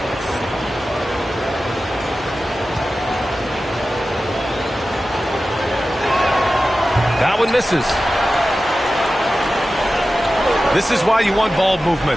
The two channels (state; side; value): normal; both; correlation 0.94